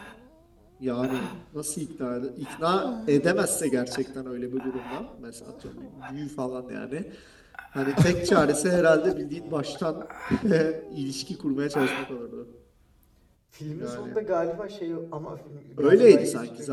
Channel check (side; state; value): both; identical; correlation 1.00